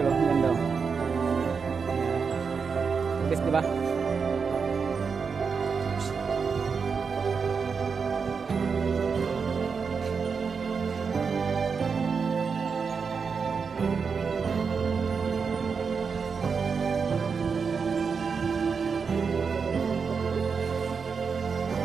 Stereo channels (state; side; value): quieter; left; 5.6 dB